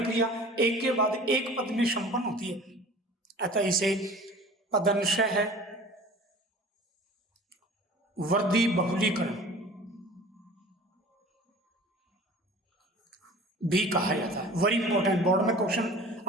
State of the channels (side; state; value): both; normal; correlation 0.42